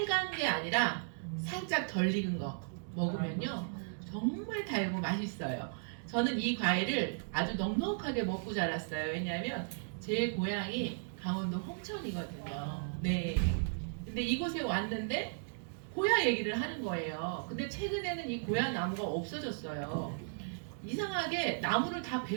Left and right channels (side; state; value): left; silent; digital silence